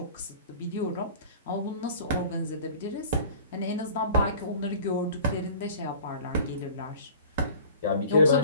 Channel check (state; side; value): inverted; both; correlation -0.44